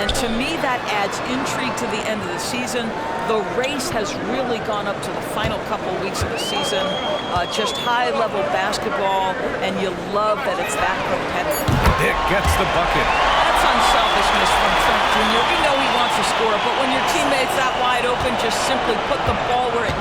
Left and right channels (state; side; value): identical; both; correlation 1.00